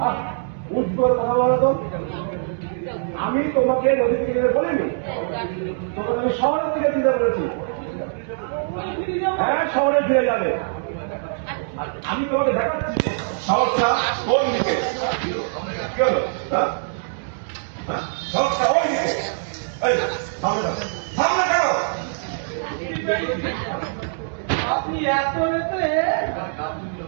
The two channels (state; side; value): silent; left; digital silence